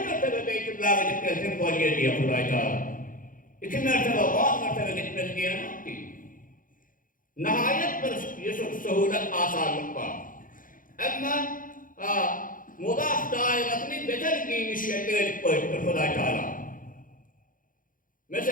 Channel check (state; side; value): late; right; 0.40 ms